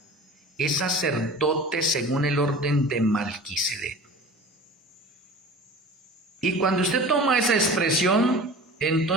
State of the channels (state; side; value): normal; both; correlation 0.38